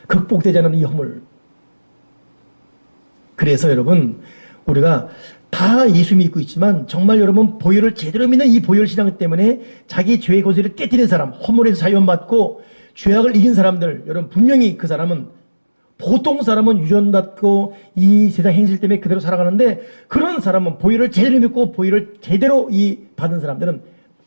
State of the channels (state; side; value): inverted; both; correlation -1.00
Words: 극복되지 않은 이 허물. 그래서 여러분 우리가 다 예수 믿고 있지만 정말 여러분 보혈을 제대로 믿는 이 보혈 신앙 때문에 자기 죄의 고지를 깨뜨린 사람, 허물에서 자유받고 죄악을 이긴 사람들 여러분 분명히 그 사람은 보통 사람은 유전받고 이 세상 행실 때문에 그대로 살아가는데 그런 사람은 보혈을 제대로 믿고 보혈을 제대로 받은 사람들은